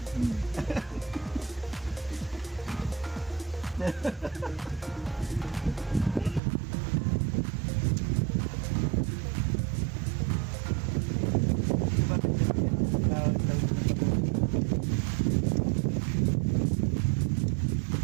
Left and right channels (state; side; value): drops out; left; at 6.4 s